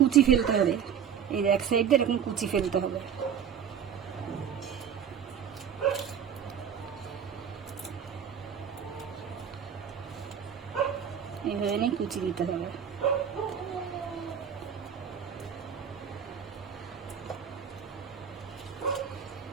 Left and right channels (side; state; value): left; quieter; 8.1 dB